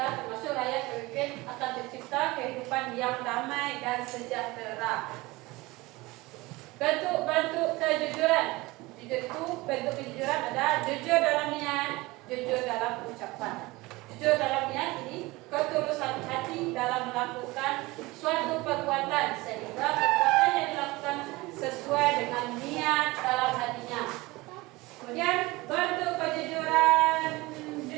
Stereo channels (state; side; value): quieter; left; 21.6 dB